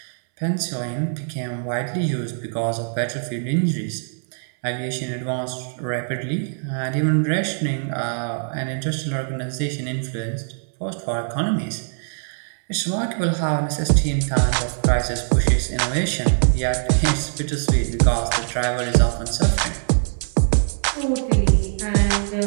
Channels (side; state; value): left; silent; 64 dB below the other